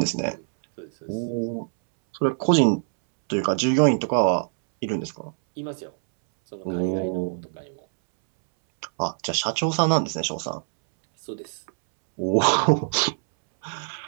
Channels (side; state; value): left; silent; 62 dB below the other